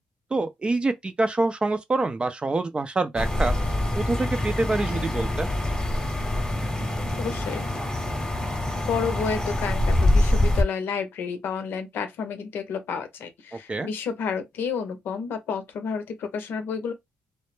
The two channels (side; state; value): both; normal; correlation 0.86